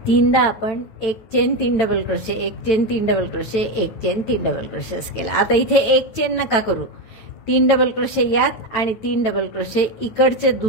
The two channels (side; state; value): right; late; 9.0 ms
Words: 3दा आपण एक चेन, 3 डबल क्रोशे, एक चेन, 3 डबल क्रोशे, एक चेन, 3 डबल क्रोशे असं केलं. आता इथे एक चेन नका करू, 3 डबल क्रोशे यात आणि 3 डबल क्रोशे इकडच्या